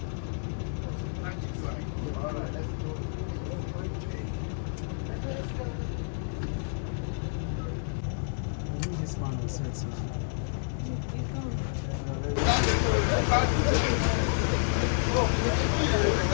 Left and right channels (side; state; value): right; silent; digital silence